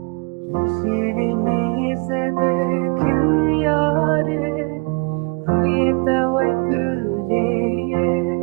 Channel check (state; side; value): quieter; left; 30.8 dB